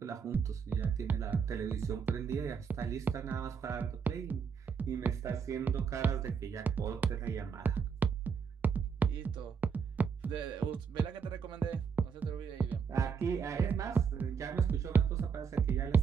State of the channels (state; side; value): quieter; left; 6.3 dB